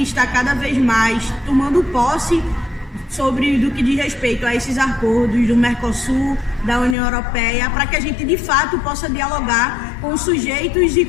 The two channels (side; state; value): right; drops out; at 7.0 s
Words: estar cada vez mais tomando posse sobre do que diz respeito a esses acordos do Mercosul, da União Europeia, para que a gente de fato possa dialogar com os sujeitos e